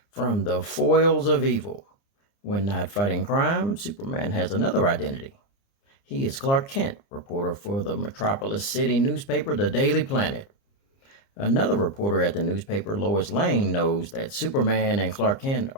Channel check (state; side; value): late; right; 30 ms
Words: from the foils of evil. When not fighting crime, Superman has another identity. He is Clark Kent, reporter for the Metropolis City newspaper, The Daily Planet. Another reporter at the newspaper, Lois Lane, knows that Superman and Clark Kent